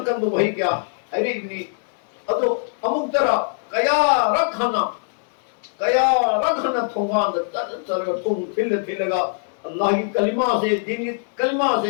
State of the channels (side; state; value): right; silent; digital silence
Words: do bhai kya are ibni adu amuk tara kaya rakhana thongan da tar thong thilaga Allah ki kalima se din ki kalima